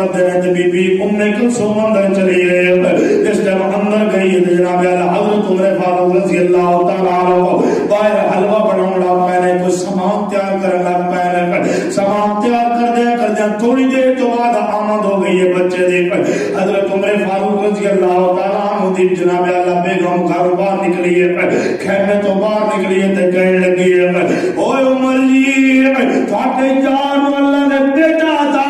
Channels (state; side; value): identical; both; correlation 1.00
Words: نے تے بی بی ام کلثوم اندر چلی گئی جس ٹائم اندر گئی تے جناب حضرت عمر فاروق رضی اللہ تعالی عنہ باہر حلوہ بناون لگ پے کوئی سامان تیار کرن لگ پے سامان تیار کردے تھوڑی دیر تو بعد آمد ہو گئی ہے بچے دی حضرت عمر فاروق رضی اللہ تعالی عنہ دی جناب اللہ بیگم گھر باہر نکلی ہے خیمے تو باہر نکلی ہے تے کہنے لگی ہے اوے عمر جی تھاڈے جان اللہ نے بیٹا عطا